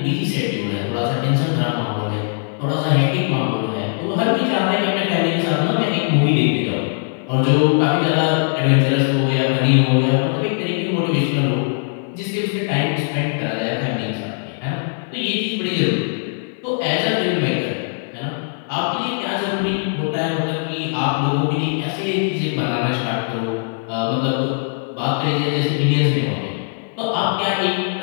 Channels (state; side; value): silent; right; 58 dB below the other